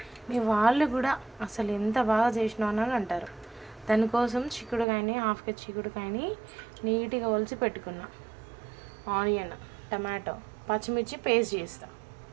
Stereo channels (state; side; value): drops out; left; at 4.9 s